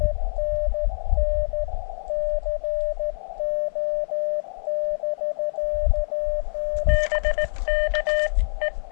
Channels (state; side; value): silent; right; 56 dB below the other